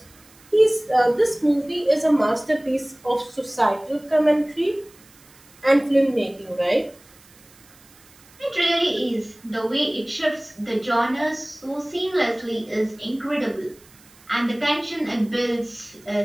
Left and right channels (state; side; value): noise; right; hiss, 26 dB below the sound